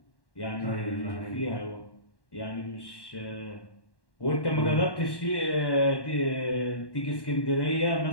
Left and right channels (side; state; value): right; late; 1.1 ms